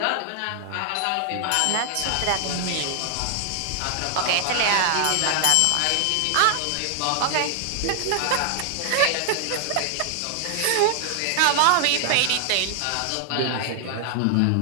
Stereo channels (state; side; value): different; both; correlation 0.00